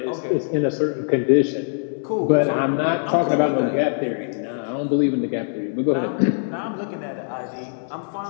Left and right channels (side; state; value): right; silent; 63 dB below the other